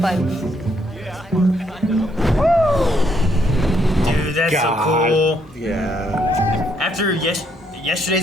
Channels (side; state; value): both; normal; correlation 0.72